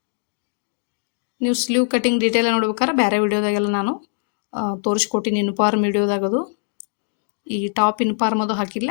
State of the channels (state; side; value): silent; right; digital silence